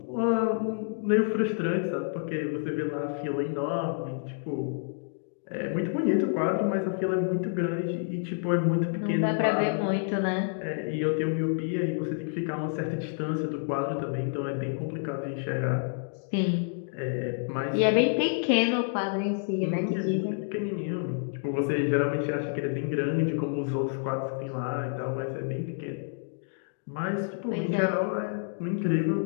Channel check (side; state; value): right; silent; digital silence